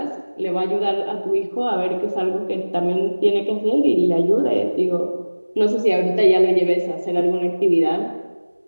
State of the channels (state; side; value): inverted; both; correlation -1.00